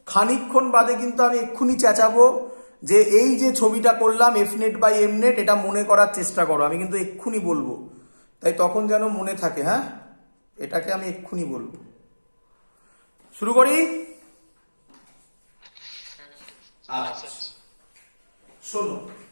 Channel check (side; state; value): both; inverted; correlation -1.00